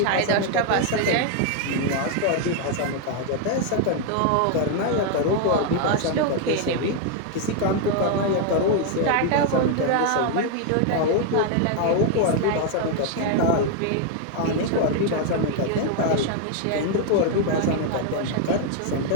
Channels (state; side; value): different; both; correlation 0.00